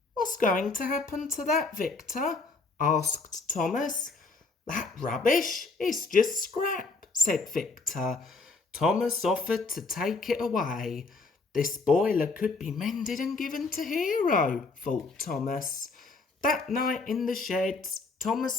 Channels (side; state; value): right; quieter; 3.9 dB